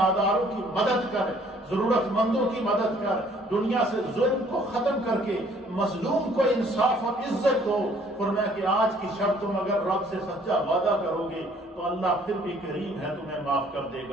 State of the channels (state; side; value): normal; both; correlation 0.59